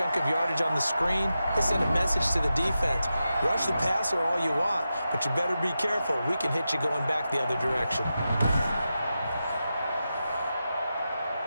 of yardage on the screen, they sent a message to the defense. Rush the passer all you want, but you better be careful. We can hit you going back the other direction.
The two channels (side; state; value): both; inverted; correlation -0.90